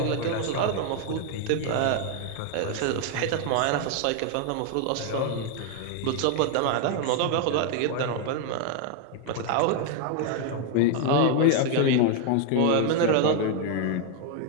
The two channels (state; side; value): different; both; correlation 0.01